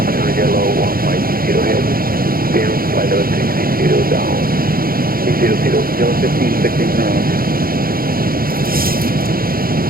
Yellow 150 ahead. Down, flight level 60 down. 800, yellow 15, 16 around.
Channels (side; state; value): left; late; 0.42 ms